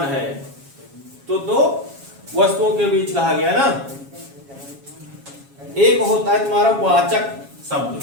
है, तो दो वस्तुओं के बीच कहा गया ना। एक होता है तुम्हारा वाचक शब्द,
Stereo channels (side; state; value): left; late; 7.3 ms